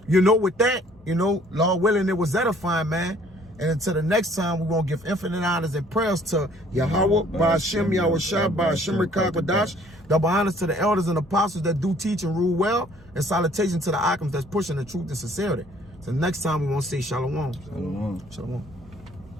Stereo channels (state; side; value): normal; both; correlation 0.58